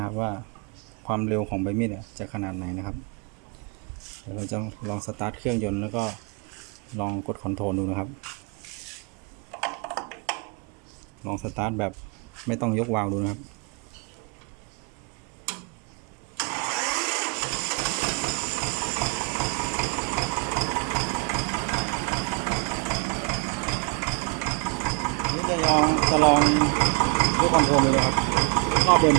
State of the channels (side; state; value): left; quieter; 33.6 dB